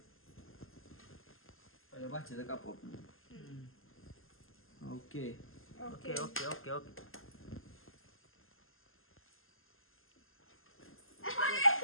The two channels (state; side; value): late; right; 0.60 ms